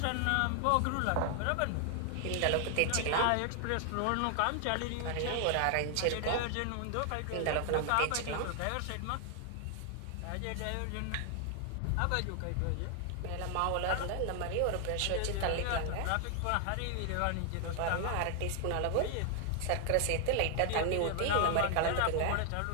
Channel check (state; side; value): different; both; correlation 0.00